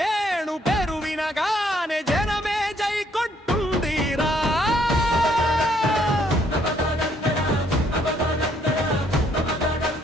పేరు వినగానే జనమే జై కొట్టుందిరా.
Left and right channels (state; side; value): normal; both; correlation 0.68